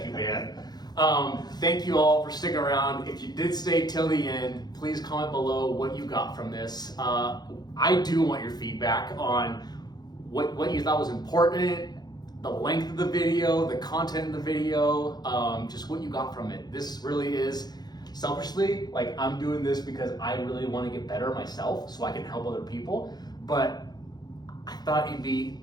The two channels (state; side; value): late; right; 0.20 ms